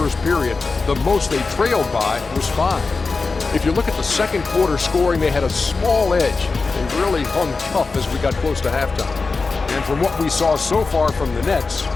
period. The most they trailed by was 5. If you look at the second quarter scoring, they had a small edge. They really hung tough as we got close to halftime. And from what we saw so far from the Nets,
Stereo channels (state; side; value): quieter; right; 4.1 dB